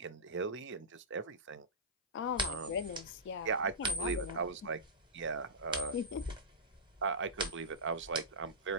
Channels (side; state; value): both; normal; correlation -0.17